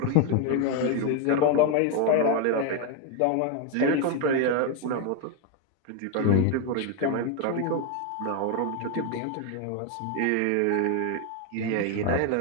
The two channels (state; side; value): different; both; correlation 0.01